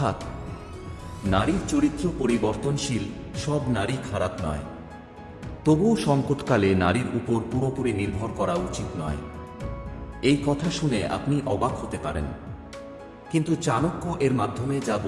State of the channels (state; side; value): identical; both; correlation 1.00